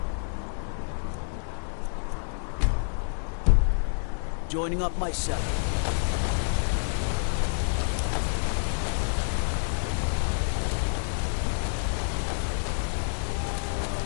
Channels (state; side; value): silent; right; digital silence